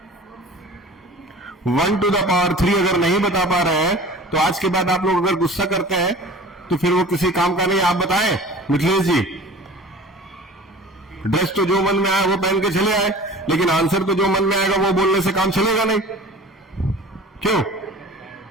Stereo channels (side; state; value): both; normal; correlation 0.42